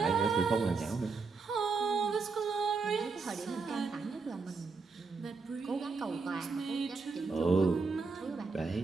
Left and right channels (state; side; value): quieter; left; 4.5 dB